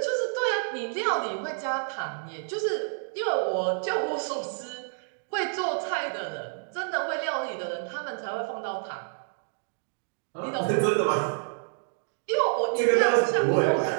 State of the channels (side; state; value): left; silent; digital silence